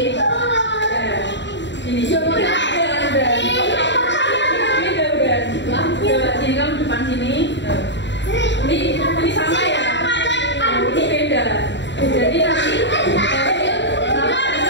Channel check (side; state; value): right; late; 0.52 ms